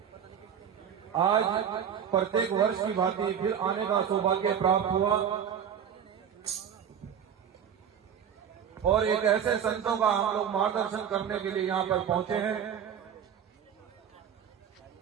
आज प्रत्येक वर्ष की भांति फिर आने का सौभाग्य प्राप्त हुआ और एक ऐसे संतों का हम लोग मार्गदर्शन करने के लिए यहाँ पर पहुंचे हैं।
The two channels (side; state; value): left; quieter; 8.4 dB